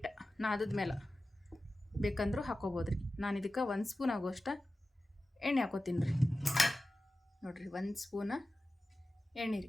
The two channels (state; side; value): normal; both; correlation 0.94